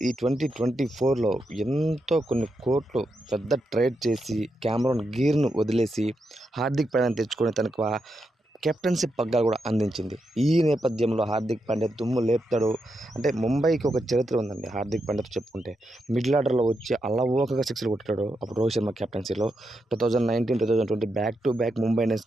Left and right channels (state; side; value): normal; both; correlation 0.84